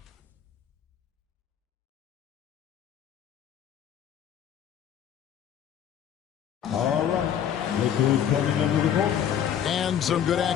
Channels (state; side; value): quieter; right; 9.3 dB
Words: And some good